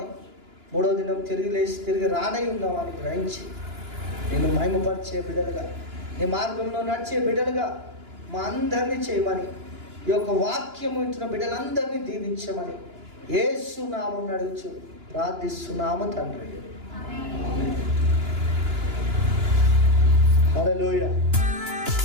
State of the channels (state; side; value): late; left; 2.9 ms